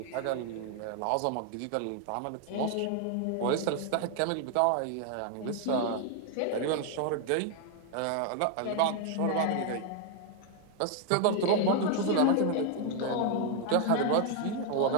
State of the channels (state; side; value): different; both; correlation 0.00